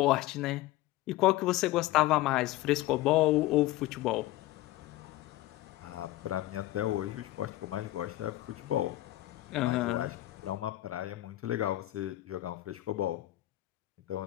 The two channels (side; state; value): right; quieter; 16.5 dB